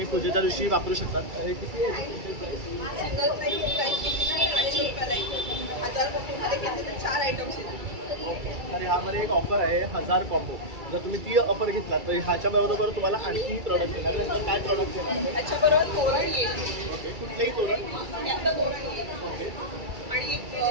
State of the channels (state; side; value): late; left; 2.3 ms